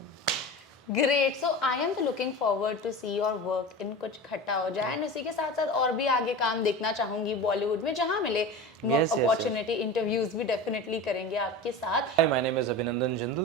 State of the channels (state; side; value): normal; both; correlation 0.30